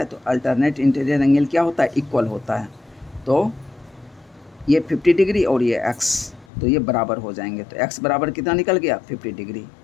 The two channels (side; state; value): right; drops out; at 6.5 s